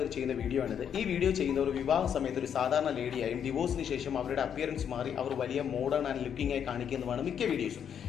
ചെയ്യുന്ന വീഡിയോ ആണിത്. ഈ വീഡിയോ ചെയ്യുന്നവർ വിവാഹ സമയത്ത് ഒരു സാധാരണ ലേഡിയായും ഡിവോഴ്സിന് ശേഷം അവരുടെ അപ്പിയറൻസ് മാറി അവർ വലിയ മോഡേൺ ആൻഡ് ലുക്കിംഗ് ആയി കാണിക്കുന്നതാണ് മിക്ക വീഡിയോസും.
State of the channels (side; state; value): right; quieter; 8.4 dB